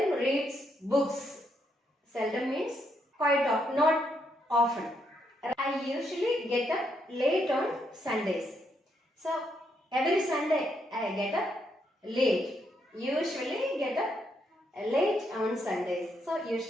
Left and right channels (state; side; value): normal; both; correlation 0.77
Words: reads books. Seldom means quite often, not often. I usually get up late on Sundays. So every Sunday I get up late. Usually get up late on Sundays. So